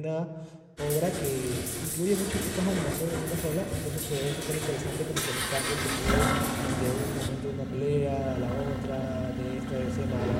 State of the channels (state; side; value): identical; both; correlation 1.00